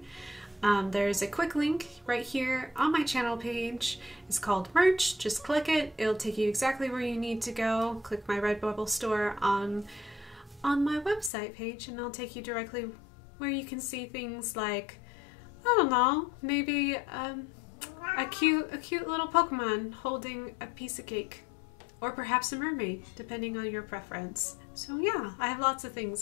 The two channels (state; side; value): drops out; right; at 11.3 s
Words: There's a quick link right here on my channel page. It's called merch. Just click it. It'll take you exactly where you need to go. Click my Redbubble store on my website page, and it'll take you directly where you can see things like, I don't know, maybe a cute little Pokemon holding a piece of cake, or perhaps a mermaid, depending on your preference. So yeah, I have lots of